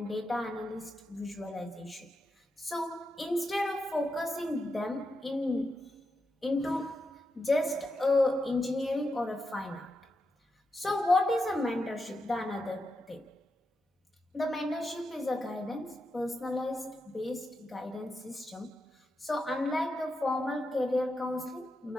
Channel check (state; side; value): normal; both; correlation 0.86